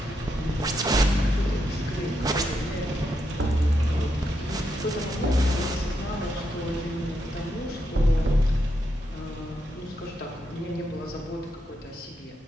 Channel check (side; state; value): both; normal; correlation 0.82